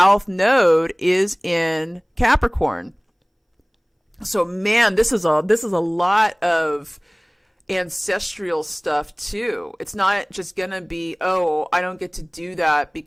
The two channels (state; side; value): identical; both; correlation 1.00